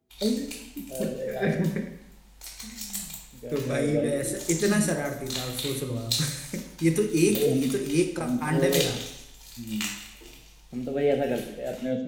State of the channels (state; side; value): identical; both; correlation 1.00